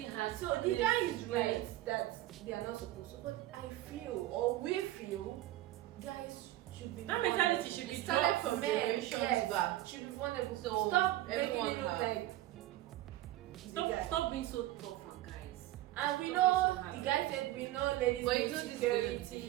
has. So the guy is right that they are not supposed to. But I feel, or we feel, guys should be. That mentality should be started from generations back. Should be vulnerable. So stop making everyone it look like. Stop being so tough on guys. And we know the guy said we know ladies But with you know this is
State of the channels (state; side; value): quieter; left; 15.6 dB